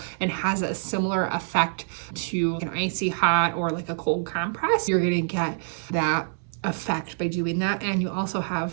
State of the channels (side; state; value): left; silent; 61 dB below the other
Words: and has a similar effect to an icy hot or like a cold compress. You're going to get that effect by doing that. And you also